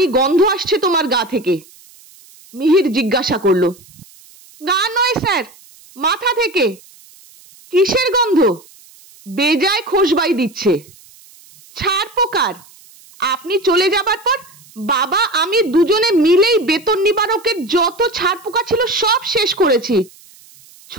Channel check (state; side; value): noise; right; hiss, 25 dB below the sound